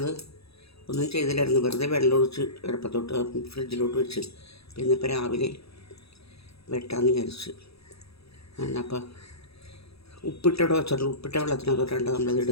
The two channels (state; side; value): late; right; 0.77 ms